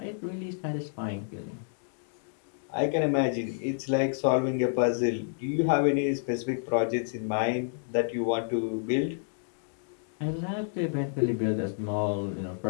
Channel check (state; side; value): silent; right; digital silence